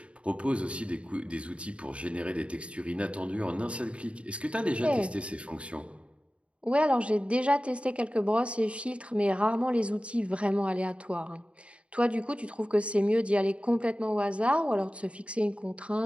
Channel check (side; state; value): left; late; 0.060 ms